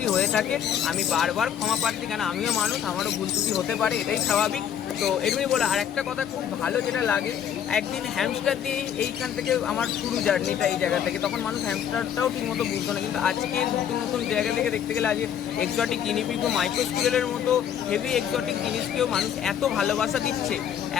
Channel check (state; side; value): quieter; right; 9.2 dB